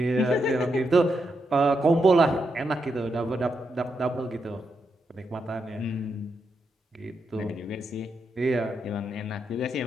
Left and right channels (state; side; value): normal; both; correlation 0.82